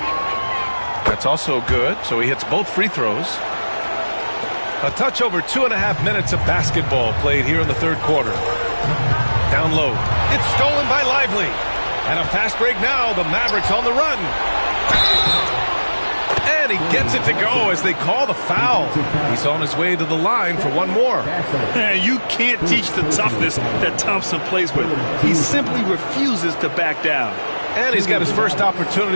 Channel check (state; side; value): inverted; both; correlation -1.00